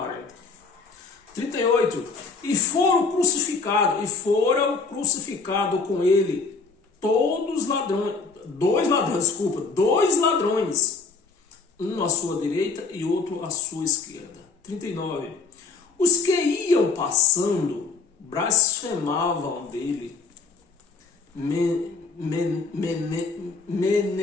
38. E foram crucificados com ele todos ladrões, dois ladrões, um à sua direita e outro à sua esquerda. 39. Os que iam passando blasfemavam dele,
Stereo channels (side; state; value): right; quieter; 4.4 dB